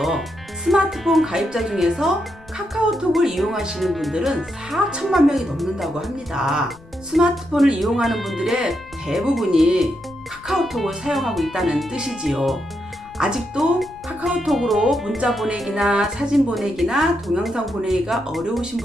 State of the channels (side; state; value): left; noise; rumble, 23 dB below the sound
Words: 스마트폰 가입자 중에서 카카오톡을 이용하시는 분들은 4천만 명이 넘는다고 합니다. 스마트폰을 이용하는 분들의 대부분이 카카오톡을 사용하고 있다는 뜻이지요. 아직도 카카오톡으로 문자 보내기나 사진 보내기나 동영상 보내기가 어려우신